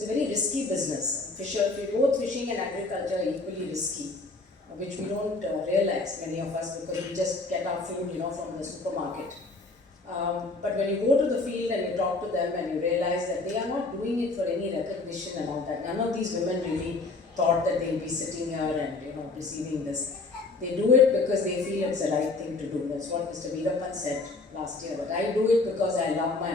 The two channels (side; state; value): right; quieter; 3.5 dB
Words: a very risky business. Both fishing and agriculture are equally risky, which we don't realize, many of us, because we just get our food, from the supermarket. But when you go to the field and you talk to them and you realize that they are not doing it for any recognition and all that. None of these women really thought that they'll be sitting here and receiving this. They do it because they feel it's the right thing to do. That's what Mr. Veerapan said last year. But I do it because I love my